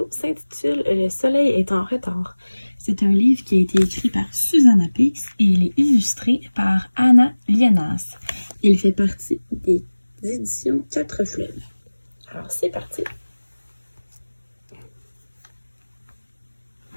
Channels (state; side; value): inverted; both; correlation -1.00